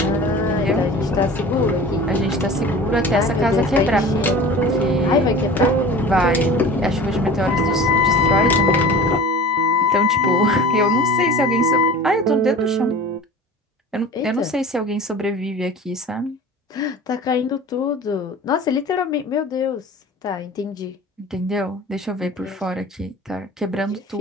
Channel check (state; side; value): normal; both; correlation 0.39